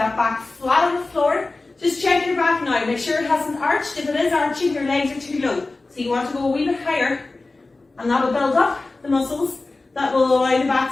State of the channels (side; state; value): right; quieter; 3.3 dB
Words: back flat on the floor. Just check your back now. Make sure it hasn't arched. If it is arching, your legs are too low. So you want to go a wee bit higher. And that will build up the muscles that will allow the back